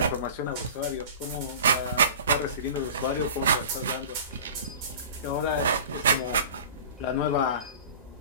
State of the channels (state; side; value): inverted; both; correlation -0.39